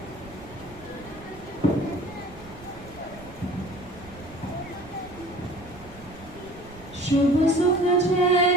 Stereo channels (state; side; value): noise; right; rumble, 19 dB below the sound